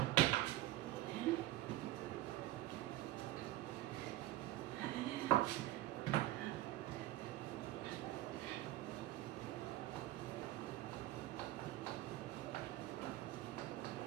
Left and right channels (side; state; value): left; quieter; 15.9 dB